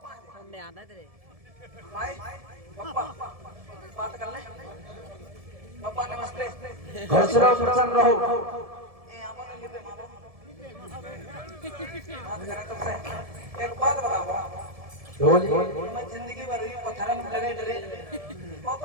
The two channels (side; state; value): left; late; 1.7 ms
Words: हमने आना तेरे भाई पप्पा बात कर ले। पप्पा नमस्ते। खुश रहो प्रसन्न रहो। ए आपने लिपे मारो, बात करें तुमसे। एक बात बताओ, मैं जिंदगी भर ही पत्थर में लगे डरे, वो